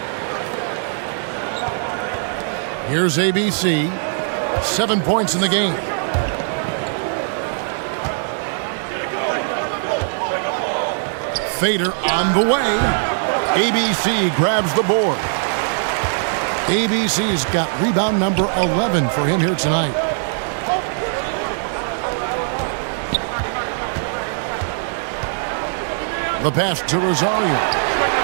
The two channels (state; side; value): silent; left; digital silence